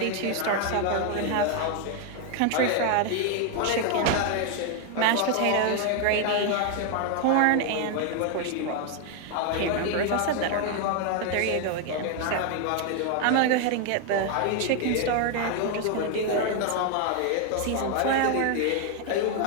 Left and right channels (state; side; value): different; both; correlation 0.01